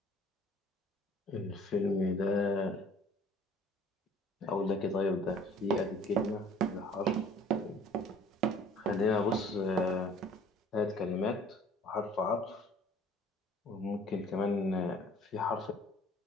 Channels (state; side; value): normal; both; correlation 0.51